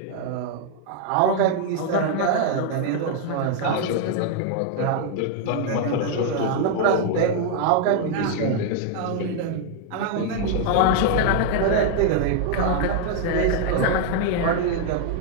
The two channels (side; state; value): both; different; correlation 0.00